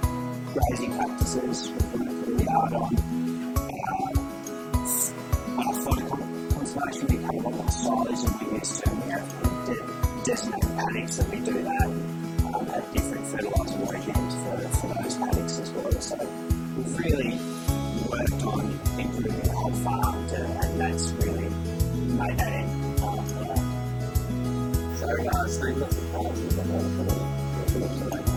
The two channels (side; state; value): both; identical; correlation 1.00